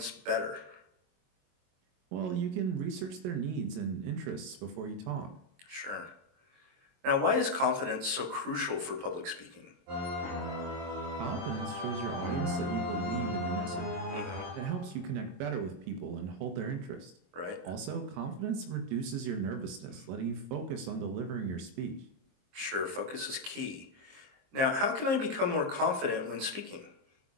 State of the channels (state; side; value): late; left; 22 ms